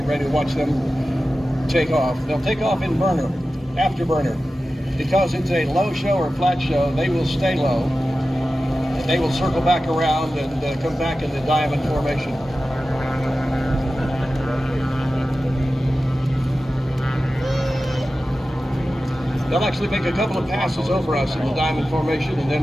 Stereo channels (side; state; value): both; normal; correlation 0.94